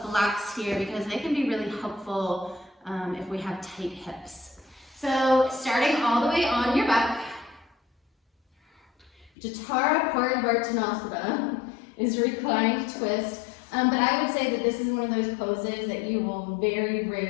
blocks here because they can be really helpful if we have tight hips. So starting all the way on your back, Jathara Parivartanasana is reclining twist. But I would say that this is one of those poses that you will very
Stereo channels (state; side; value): drops out; right; at 9.3 s